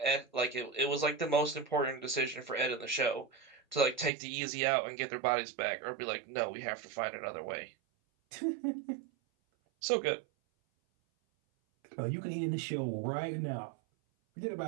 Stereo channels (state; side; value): drops out; left; at 4.1 s